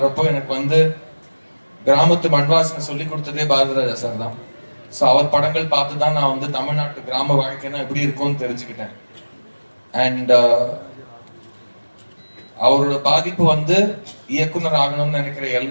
எனக்கு வந்து கிராமத்து மண்வாசனை சொல்லி கொடுத்ததே பாரதிராஜா சார் தான். ஸோ அவர் படங்கள் பார்த்து தான் நான் வந்து தமிழ்நாட்டு கிராம வாழ்க்கைனா எப்படி இருக்கும்னு தெரிஞ்சுக்கிட்டேன். அண்ட் அவரோட பாதிப்பு வந்து இயக்குனர் ஆகணும்னு நினைக்கிற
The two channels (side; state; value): both; inverted; correlation -1.00